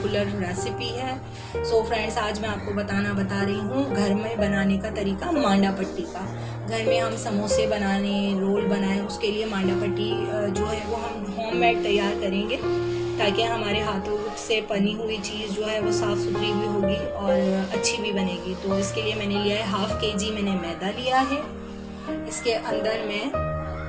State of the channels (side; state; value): both; identical; correlation 1.00